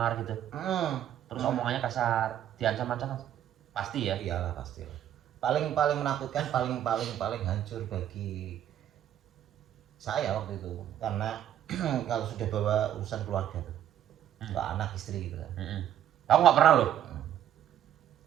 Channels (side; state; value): left; quieter; 11.0 dB